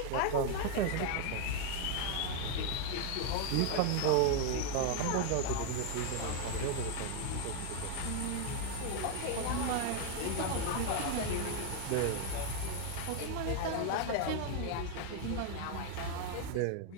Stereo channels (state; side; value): different; both; correlation 0.01